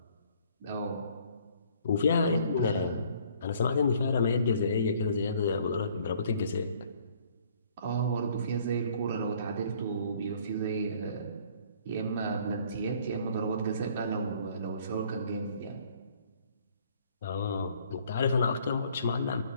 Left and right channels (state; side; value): inverted; both; correlation -0.59